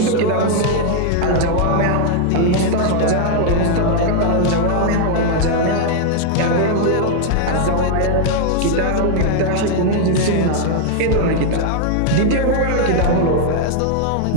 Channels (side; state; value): both; different; correlation 0.00